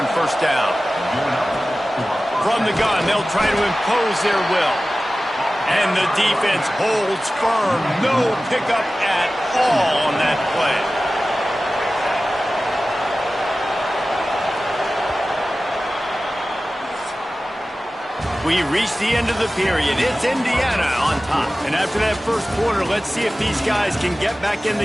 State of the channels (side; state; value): both; normal; correlation 0.96